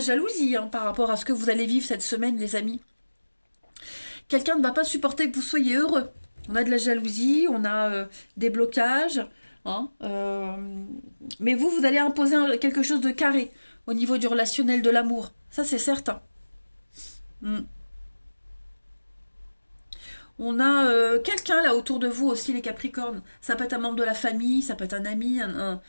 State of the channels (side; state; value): both; inverted; correlation -1.00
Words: hein, par rapport à ce que vous allez vivre cette semaine, les amis. Quelqu'un ne va pas supporter que vous soyez heureux. On a de la jalousie, on a des blocages. Hein, mais vous allez imposer quelque chose de carré au niveau du relationnel, de l'amour. Ça, c'est certain. On a quelqu'un là autour de vous aussi, les Capricornes. Ça peut être un membre de la famille, ça peut être un ami, un